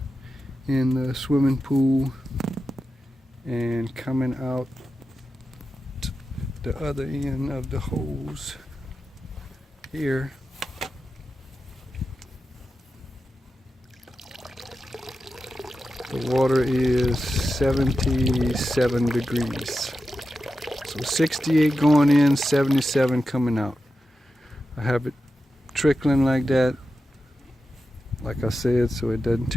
in the swimming pool, and coming out the other end of the hose here the water is 77 degrees. So 68 going in, 77 coming out. I have it trickling like that, like I said, so it doesn't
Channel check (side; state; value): both; normal; correlation 0.91